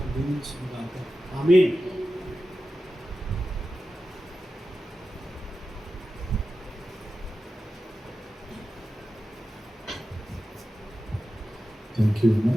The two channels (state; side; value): normal; both; correlation 0.93